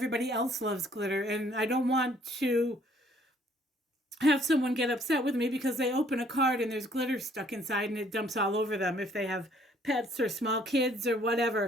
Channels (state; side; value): normal; both; correlation 0.62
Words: else loves glitter, and I don't want to have someone get upset with me because they open a card and there's glitter stuck inside and it dumps all over them if they have pets or small kids or